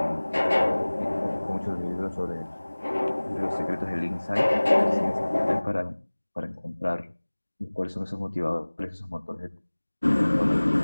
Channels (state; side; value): inverted; both; correlation -1.00